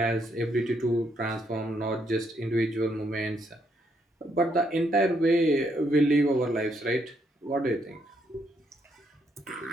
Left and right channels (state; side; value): normal; both; correlation 0.74